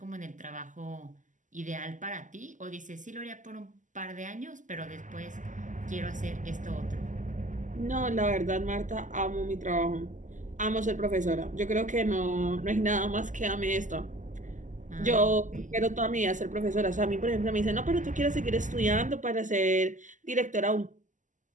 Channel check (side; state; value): left; late; 0.37 ms